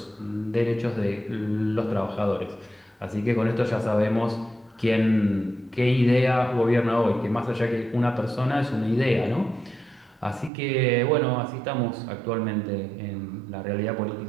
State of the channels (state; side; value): drops out; left; at 10.5 s